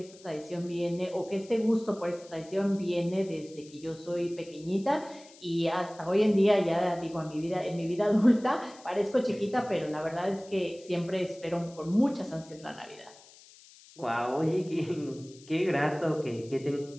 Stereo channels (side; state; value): left; noise; hiss, 23 dB below the sound